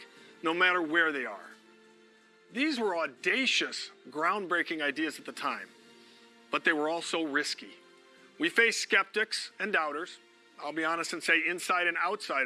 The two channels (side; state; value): both; identical; correlation 1.00